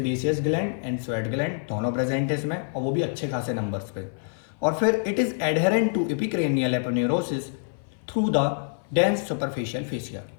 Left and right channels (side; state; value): right; silent; 57 dB below the other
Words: gland and sweat gland दोनों प्रेजेंट है इसमें, और वो भी अच्छे खासे नंबर्स पे। और फिर it is adherent to epicranial aponeurosis through the dense superficial fascia.